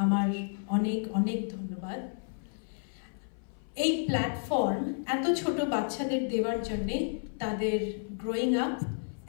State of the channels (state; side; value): silent; right; 56 dB below the other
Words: আমার অনেক অনেক ধন্যবাদ। এই প্ল্যাটফর্ম এত ছোট বাচ্চাদের দেওয়ার জন্যে তাদের growing up